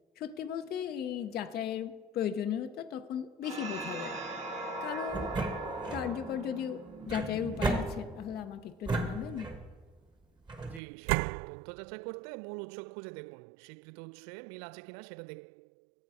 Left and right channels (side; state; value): left; drops out; at 10.8 s